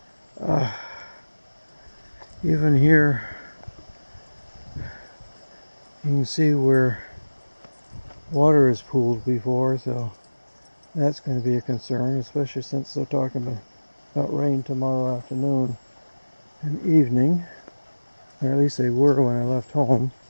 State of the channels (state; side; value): inverted; both; correlation -1.00